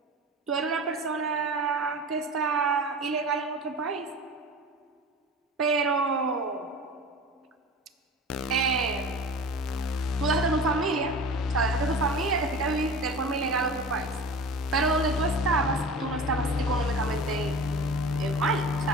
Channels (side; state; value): both; normal; correlation 0.36